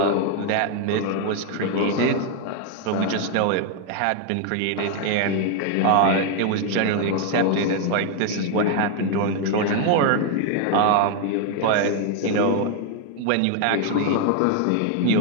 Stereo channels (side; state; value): both; different; correlation 0.00